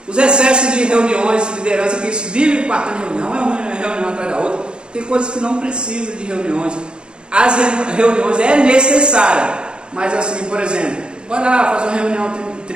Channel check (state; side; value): late; left; 0.051 ms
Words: Os excessos de reuniões, de liderança, que vive partando de reunião, é uma reunião atrás da outra. Tem coisas que não precisam de reuniões. As reuniões é necessária, mas assim, por exemplo, vai lá fazer uma reunião